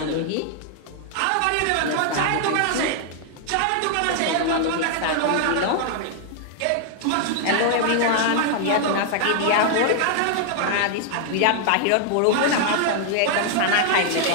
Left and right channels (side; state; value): both; different; correlation 0.00